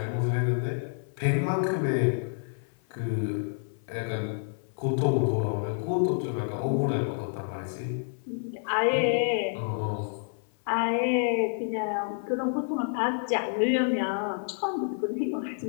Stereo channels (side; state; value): right; silent; 59 dB below the other